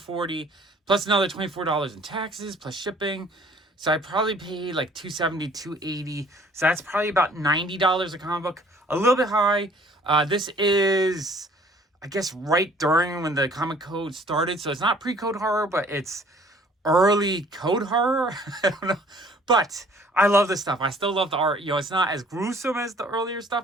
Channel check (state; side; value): normal; both; correlation 0.55